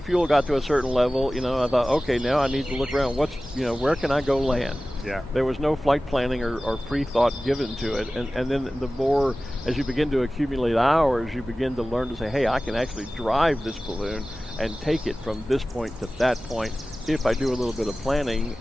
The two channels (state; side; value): normal; both; correlation 0.97